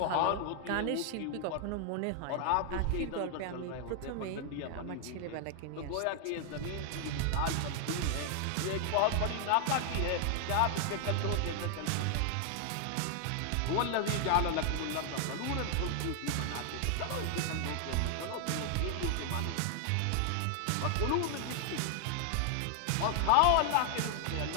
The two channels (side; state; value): both; different; correlation 0.00